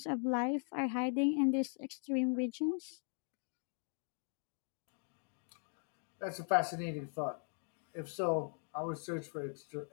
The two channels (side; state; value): right; silent; 51 dB below the other